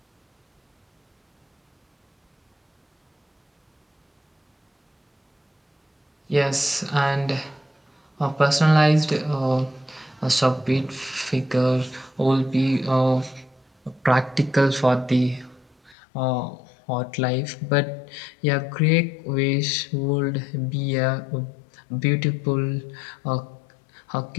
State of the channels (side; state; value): right; drops out; at 16.0 s